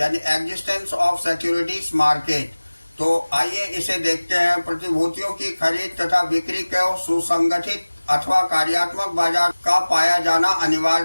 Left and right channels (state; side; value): inverted; both; correlation -1.00